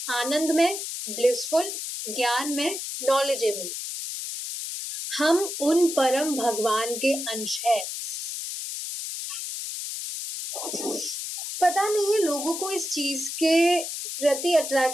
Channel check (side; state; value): left; noise; hiss, 5 dB below the sound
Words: आनंद में, ब्लिसफुल, ज्ञान में, नॉलेजेबल। हम उन परम भगवान के अंश है। पता नहीं है लोगों को इस चीज के प्रति